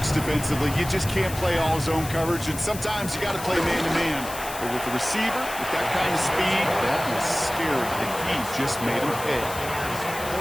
defensively. You just can't play all zone coverage, and sometimes you got to play man-to-man. But with the receiver, with that kind of speed, that was scary, and he just made him pay.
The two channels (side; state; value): left; noise; hiss, 11 dB below the sound